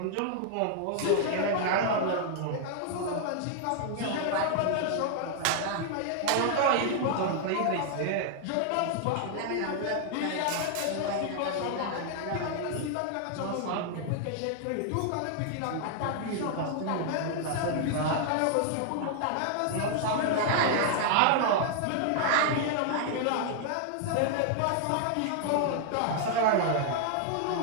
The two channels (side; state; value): both; different; correlation 0.00